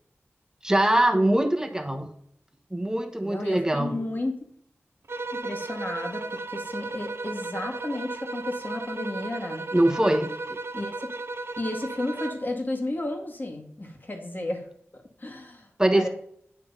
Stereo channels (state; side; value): normal; both; correlation 0.93